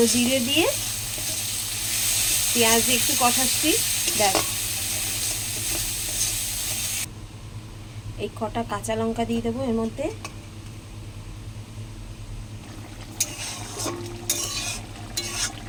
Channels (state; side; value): identical; both; correlation 1.00